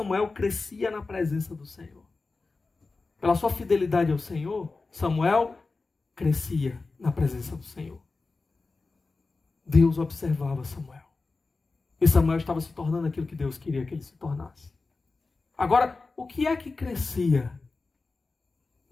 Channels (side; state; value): right; quieter; 3.8 dB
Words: crescia na presença do Senhor. Pela sua fidelidade ao Senhor, Samuel crescia na presença do Senhor. Deus observava Samuel. E Samuel estava se tornando aquilo que Deus queria que ele se tornasse. Agora, o que é que crescia